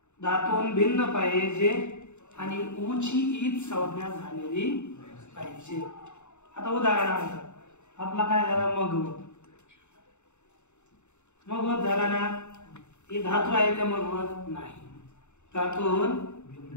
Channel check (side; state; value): right; late; 0.83 ms